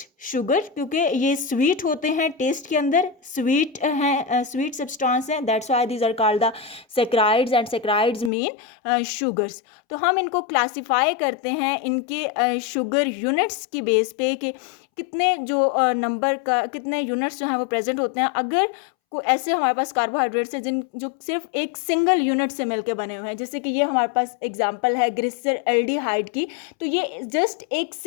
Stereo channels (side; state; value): right; drops out; at 8.3 s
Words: शुगर, क्योंकि ये स्वीट होते हैं, टेस्ट के अंदर स्वीट हैं, स्वीट सब्सटेंस हैं, that's why these are called the saccharides, and saccharides mean sugars. तो हम इनको क्लासिफाई करते हैं इनके शुगर यूनिट्स की बेस पे कि कितने जो नंबर का कितने यूनिट्स जो हैं वो प्रेजेंट होते हैं। अगर को ऐसे हमारे पास कार्बोहाइड्रेट्स हैं जो सिर्फ एक सिंगल यूनिट से मिलकर बने हुए हैं, जैसे कि ये हमारे पास एग्जांपल है ग्लिसर एल्डिहाइड की, तो ये जस्ट एक